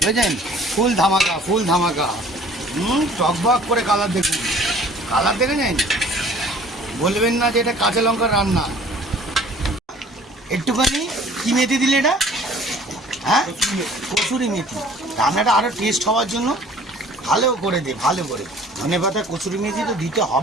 বুঝলেন? ফুল ধামাকা, ফুল ধামাকা। টকবক করে কালার দেখুন, কালার দেখেছেন, বলবেন না যে এটা কাঁচা লঙ্কার রান্না। একটুখানি কি মেথি দিলে এটা? হ্যাঁ কসুরি মেথি, রান্নাটা আরও টেস্ট হওয়ার জন্য ভালো করে দে, ভালো করে ধনে পাতা কসুরি মেথি তো দিতে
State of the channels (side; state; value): both; normal; correlation 0.52